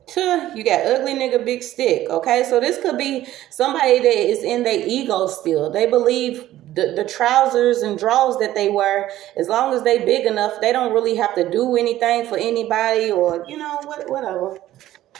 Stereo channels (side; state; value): left; quieter; 14.0 dB